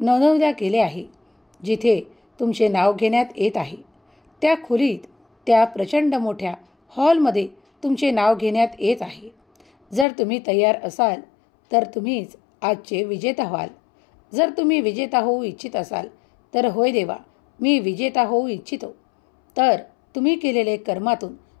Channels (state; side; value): drops out; right; at 10.1 s